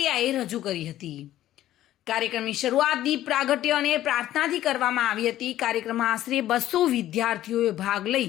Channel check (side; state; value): right; quieter; 13.4 dB